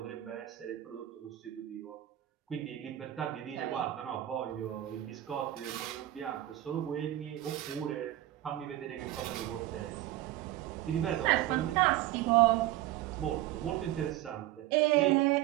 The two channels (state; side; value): quieter; left; 14.6 dB